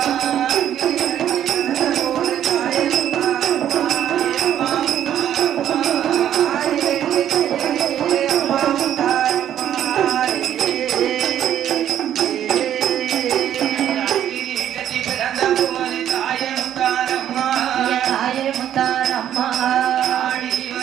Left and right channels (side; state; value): left; quieter; 10.7 dB